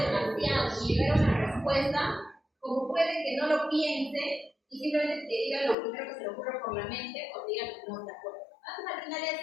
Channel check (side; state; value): right; drops out; at 5.8 s